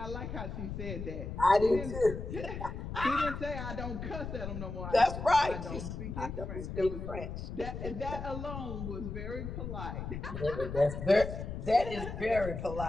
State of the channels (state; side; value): noise; left; rumble, 6 dB below the sound